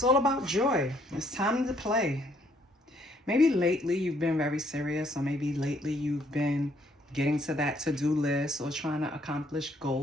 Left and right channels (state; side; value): normal; both; correlation 0.67